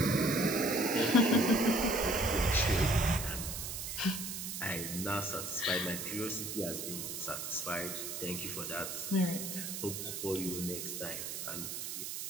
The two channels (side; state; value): right; noise; hiss, 5 dB below the sound